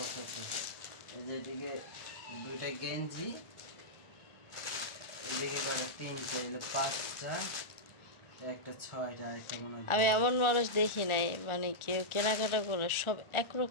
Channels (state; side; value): late; right; 1.4 ms